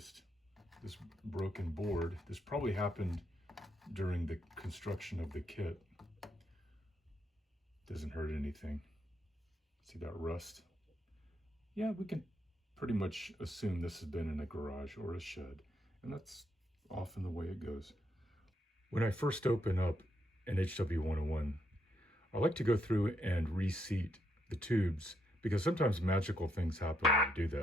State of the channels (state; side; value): normal; both; correlation 0.77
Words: this broken board. This probably happened during the construction of the kit. Doesn't hurt anything. See that rust? Yeah, we can pretty much assume this has been in a garage or a shed, and that's often the way it goes. When I first open up an HW-101, I like to go through and reseat the tubes, because sometimes magical things happen when I do